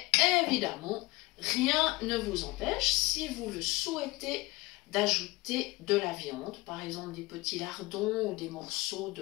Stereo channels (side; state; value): right; quieter; 22.1 dB